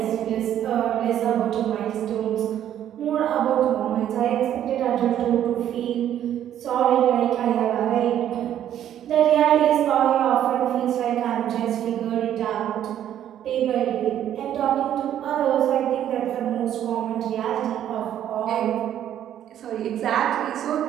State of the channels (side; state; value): left; quieter; 10.8 dB